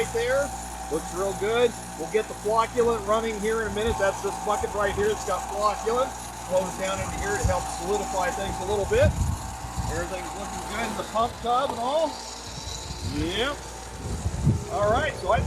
there. Looks real good. We'll get the flocculant running here in a minute. That's this bucket right here. It's got flocculant. Flows down into here to help solidify things a little bit. Everything's looking good in the pump tub and all. Yep. All right, so I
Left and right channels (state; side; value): identical; both; correlation 1.00